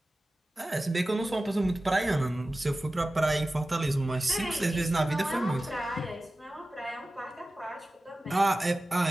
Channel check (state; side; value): normal; both; correlation 0.96